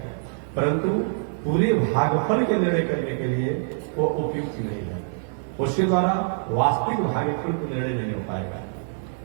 परंतु पूरे भागफल के निर्णय करने के लिए वो उपयुक्त नहीं है। उसके द्वारा वास्तविक भागफल को निर्णय नहीं हो पाएगा।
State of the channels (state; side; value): silent; left; 62 dB below the other